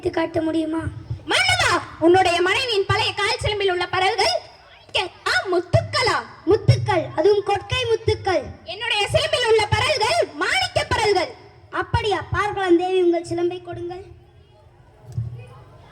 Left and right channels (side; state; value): both; identical; correlation 1.00